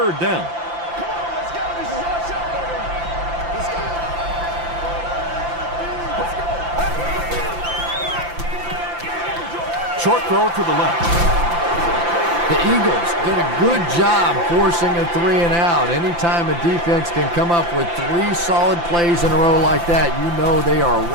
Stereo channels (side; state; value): left; late; 5.8 ms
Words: down. Short throw to the left. The Eagles did a good job forcing a 3 and out. Anytime a defense can come up with 3 solid plays in a row like that, you know they are